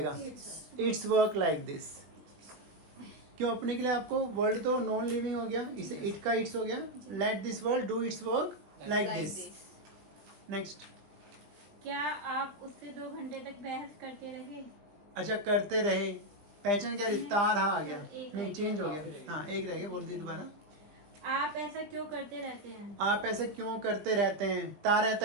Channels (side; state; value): left; late; 19 ms